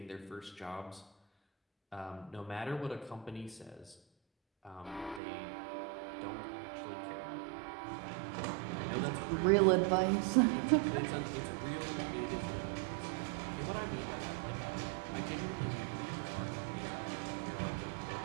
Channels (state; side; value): drops out; left; at 5.2 s